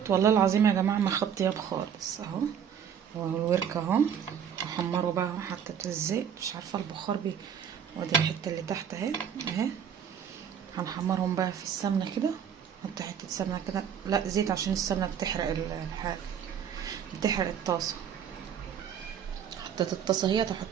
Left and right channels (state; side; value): quieter; left; 8.2 dB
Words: والله العظيم يا جماعه ما خد طياب خالص اهو. هو الورك اهو. هحمره بقى اهو. حطيت الزيت، مش عارفه البخار ودي الحته اللي تحت اهي اهي. هنحمرهم بقى في السمنه كده. نحط حته سمنه كده، لا زيت، عشان السمنه بتحرق الحاجه، بتحرق الطاسه. حطيت الطاسه اهي،